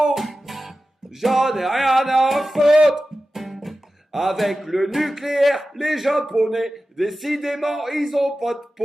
J'en ai rien à foutre. Avec le nucléaire, les Japonais, décidément, ils ont pas de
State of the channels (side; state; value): both; normal; correlation 0.94